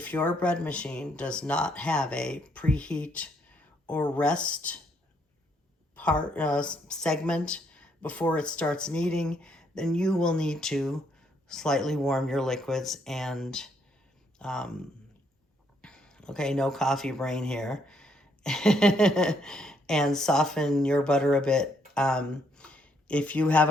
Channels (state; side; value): normal; both; correlation 0.72